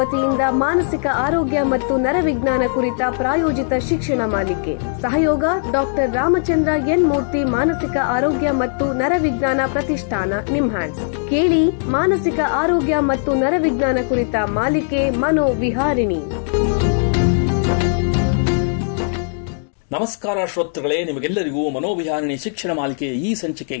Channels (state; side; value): silent; right; digital silence